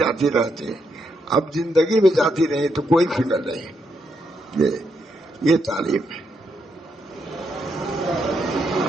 رہتی، اب زندگی میں جاتی رہی تو کوئی فکر نہیں۔ یہ تعلیم ہے۔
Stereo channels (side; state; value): both; normal; correlation 0.79